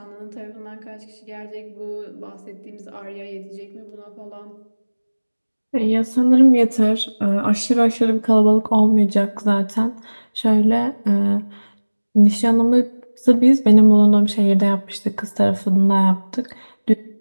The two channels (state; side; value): inverted; both; correlation -1.00